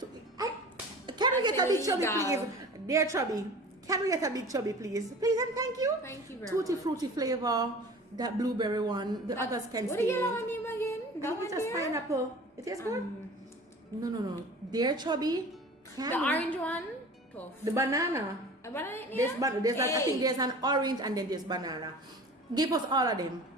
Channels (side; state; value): both; normal; correlation 0.40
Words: we get I a big said, Chubby, illegal. please? Dear Chubby, can we get a big Chubby, please? Please and thank you. Thank you very Tutti much. fruity flavor, that blueberry one. The others can What stay. the yellow one name again? That one It's just there? pineapple. It tastes good. No. Dear Chubby, can The we- orange one? Tough. the banana. A banana in There's, there? there's I think there's an orange and then there's banana. Give us all of them.